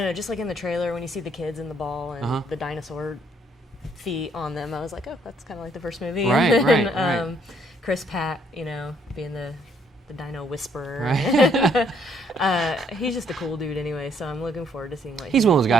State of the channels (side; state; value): both; normal; correlation 0.67